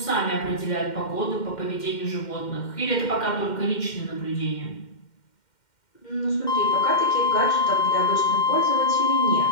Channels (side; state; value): right; late; 2.1 ms